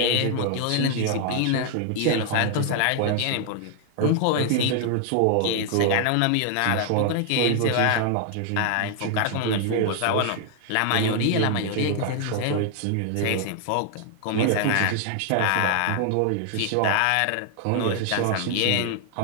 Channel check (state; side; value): different; both; correlation 0.00